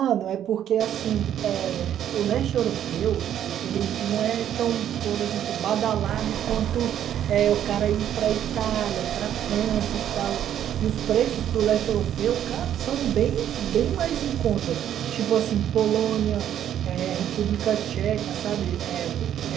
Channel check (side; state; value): left; quieter; 10.4 dB